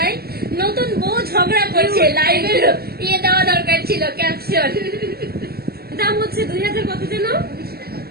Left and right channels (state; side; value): late; left; 0.45 ms